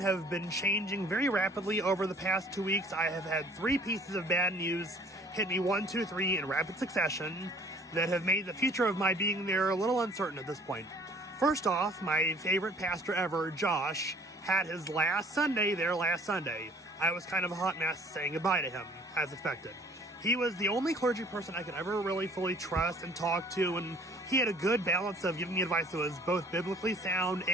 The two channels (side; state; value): both; normal; correlation 0.54